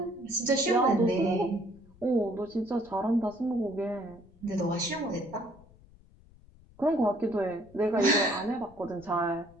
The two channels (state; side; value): noise; left; rumble, 25 dB below the sound